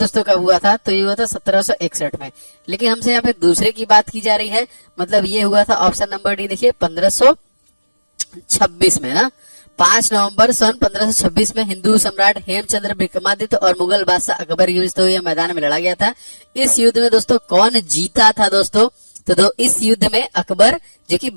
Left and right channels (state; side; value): inverted; both; correlation -1.00